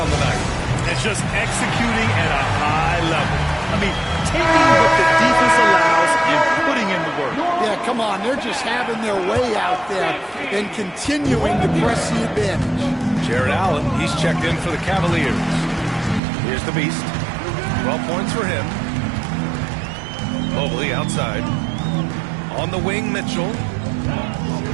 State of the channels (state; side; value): drops out; left; at 16.2 s